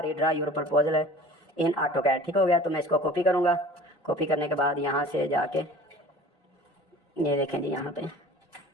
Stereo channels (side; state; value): both; normal; correlation 0.43